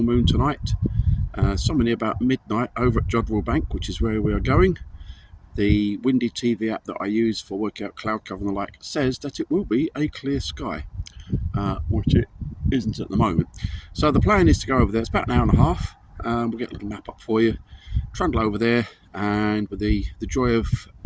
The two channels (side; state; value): both; identical; correlation 1.00